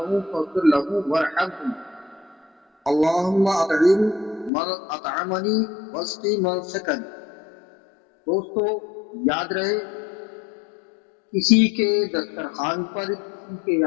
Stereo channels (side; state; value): right; drops out; at 4.5 s